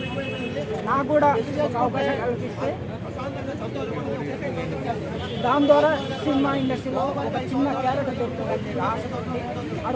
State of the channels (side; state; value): both; identical; correlation 1.00